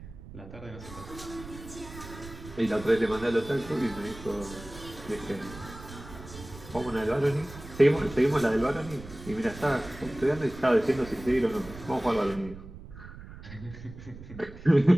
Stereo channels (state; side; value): noise; right; rumble, 15 dB below the sound